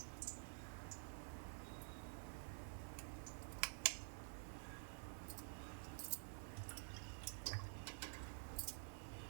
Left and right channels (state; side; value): silent; left; digital silence